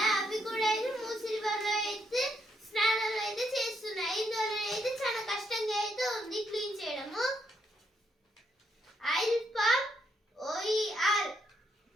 అవి కూడా అయితే మూసి రివర్ లో అయితే స్నానాలు అయితే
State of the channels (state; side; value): normal; both; correlation 0.76